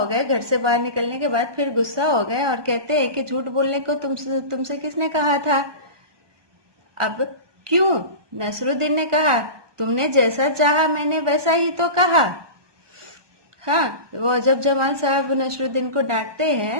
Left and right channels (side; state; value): left; late; 1.2 ms